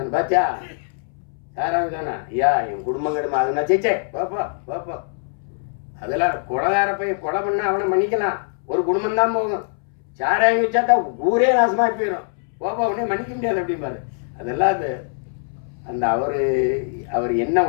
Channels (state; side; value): silent; right; 63 dB below the other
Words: பாத்தியா, சாராயம் தானே ஐயா என் குடும்பம் கிடமா அதுனா சேச்சே பாப்பா பாப்பா. அதெல்லாம் கொலைகார போய் கொலை பண்ணால் அவனை மன்னிக்கலாம், ஒரு குடும்பம் தான் போகும். சாராயம் வச்சாட்டா ஊரே நாசமாக போயிடும், பாப்பா அவனே மன்னிக்க முடியாது அப்படிம்பாரு. அதெல்லாம் அது அந்த அவர் என்ன